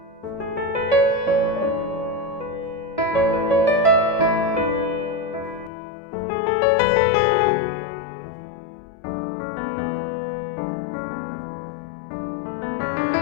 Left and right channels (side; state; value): right; drops out; at 5.7 s